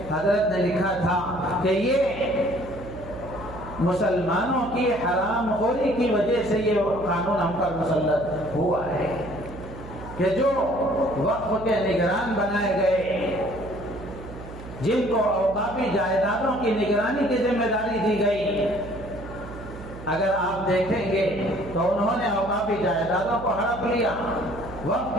حضرت نے لکھا تھا کہ یہ مسلمانوں کی حرام خوری کی وجہ سے یہ قانون ہم پر مسلط ہوا ہے کہ جو وقف کے نگران بنائے گئے، جن کو اوقافی جائیدادوں کی نگرانی کی ذمہ داری دی گئی، اگر آپ دیکھیں گے تو انہوں نے اوقافی جائیدادوں کو ہڑپ لیا، وقف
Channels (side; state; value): right; noise; hum, 13 dB below the sound